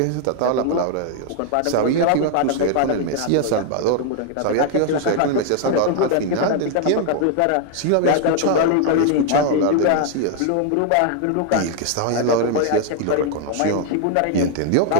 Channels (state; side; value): different; both; correlation 0.00